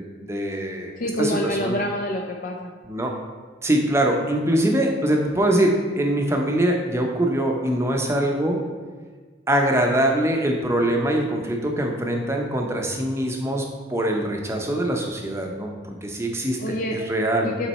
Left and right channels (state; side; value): normal; both; correlation 0.57